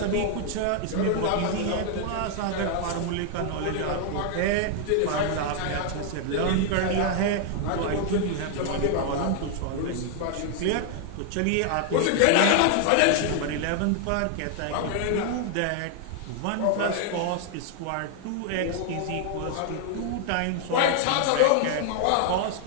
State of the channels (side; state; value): both; different; correlation 0.00